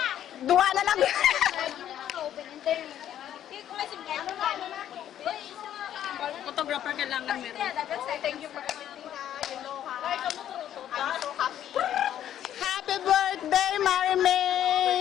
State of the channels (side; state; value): right; quieter; 10.9 dB